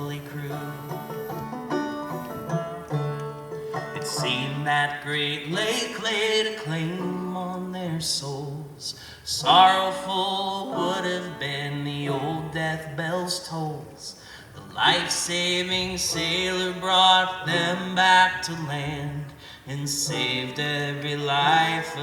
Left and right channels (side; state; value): both; identical; correlation 1.00